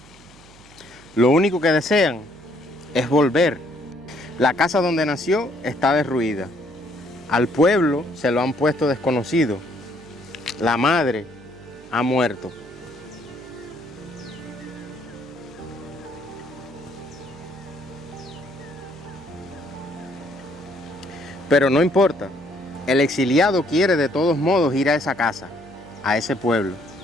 Lo único que desean es volver. La casa donde nació está derruida. Al pueblo se lo han puesto desconocido. La madre ha muerto. Pero no importa. El exiliado quiere de todos modos ir a esa casa, a ese pueblo,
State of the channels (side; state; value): right; noise; hum, 24 dB below the sound